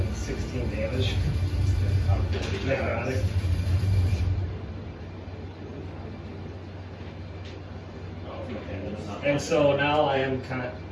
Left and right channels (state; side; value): identical; both; correlation 1.00